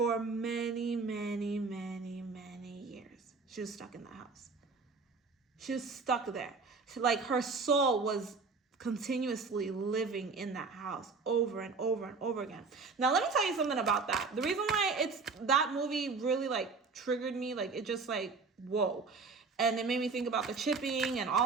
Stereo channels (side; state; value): left; quieter; 4.5 dB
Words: many, many, many, many years. She was stuck in that house. She was stuck there. Like her soul was continuously living in that house over and over and over again. Now, let me tell you something about that. The reason why that movie really like triggered me, like it just like, whoa. And it made me think about the chipping and